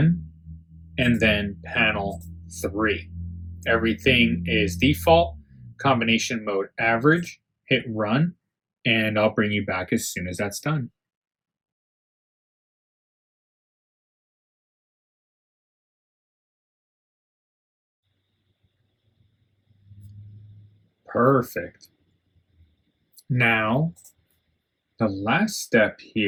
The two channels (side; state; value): both; identical; correlation 1.00